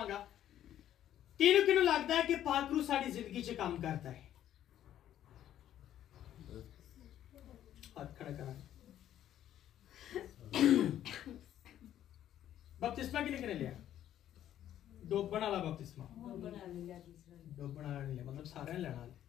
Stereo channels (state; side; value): quieter; right; 11.5 dB